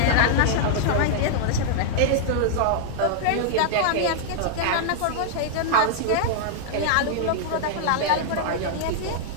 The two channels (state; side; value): different; both; correlation -0.01